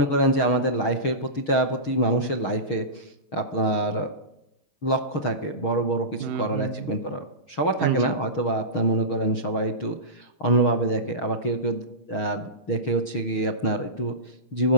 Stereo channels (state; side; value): late; right; 6.4 ms